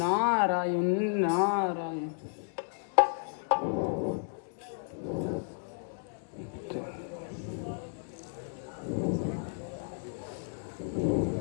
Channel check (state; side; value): silent; right; digital silence